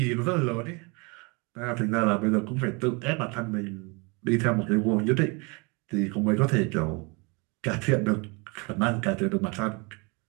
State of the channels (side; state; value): left; quieter; 29.9 dB